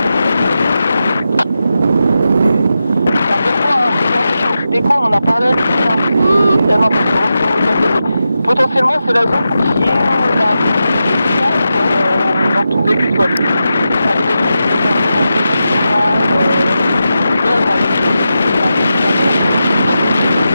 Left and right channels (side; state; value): both; inverted; correlation -0.89